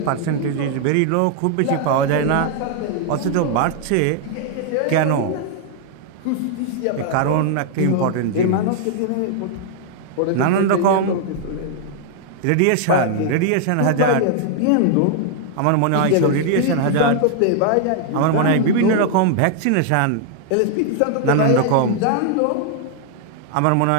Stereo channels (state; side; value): different; both; correlation 0.00